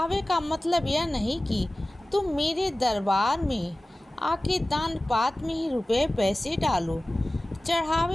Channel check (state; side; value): normal; both; correlation 0.97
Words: का मतलब यह नहीं कि तुम मेरे दरबार में आके दान पात्र में ही रुपए पैसे डालो।